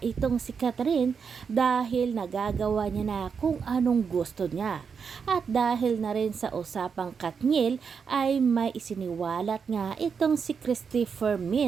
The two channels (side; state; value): left; quieter; 6.1 dB